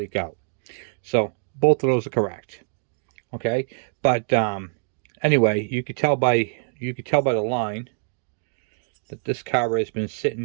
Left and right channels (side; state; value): left; silent; digital silence